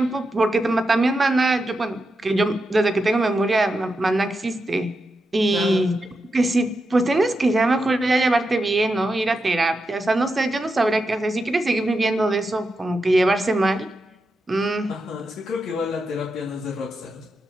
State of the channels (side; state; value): both; normal; correlation 0.87